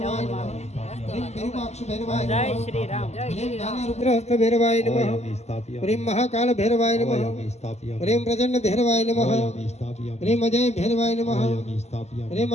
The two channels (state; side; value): late; right; 0.32 ms